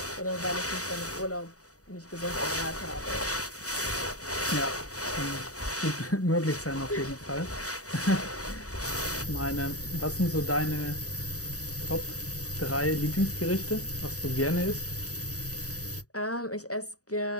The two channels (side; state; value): right; late; 0.66 ms